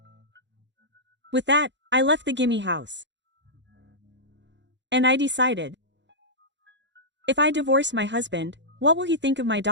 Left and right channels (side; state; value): left; late; 0.52 ms